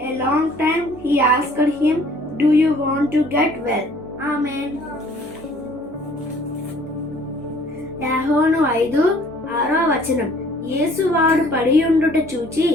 a long time, he asked him, "Do you want to get well?" Amen. యోహాను 5:6 యేసు వాడు పడి ఉండుట చూచి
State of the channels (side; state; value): both; normal; correlation 0.56